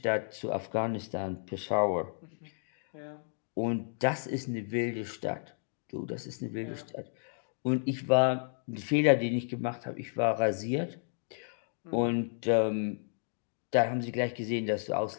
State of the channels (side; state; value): right; silent; digital silence